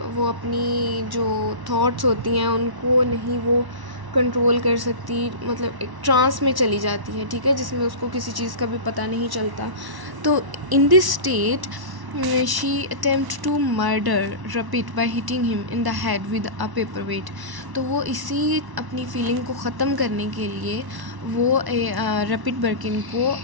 वो अपनी जो थॉट्स होती हैं उनको नहीं वो कंट्रोल कर सकती, मतलब एक ट्रांस में चली जाती है। ठीक है, जिसमें उसको किसी चीज़ का भी पता नहीं चलता। तो in this state she attempt to murder Rupert by hitting him in the head with a paperweight. तो वो इसी अपनी फीलिंग को ख़त्म करने के लिए वो रपिट बर्किन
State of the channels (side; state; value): left; late; 1.1 ms